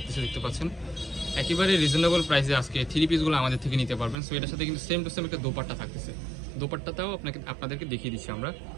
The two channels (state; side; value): drops out; left; at 4.2 s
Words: দেখতে পাচ্ছেন। একেবারে রিজনেবল প্রাইসে আজকে থ্রি পিসগুলো আমাদের থেকে নিতে পারবেন। সো এটার সাথে কিন্তু সেম টু সেম একটা দোপাট্টা থাকতেছে। দোপাট্টাটাও আপনাদেরকে দেখিয়ে দিচ্ছি আমরা।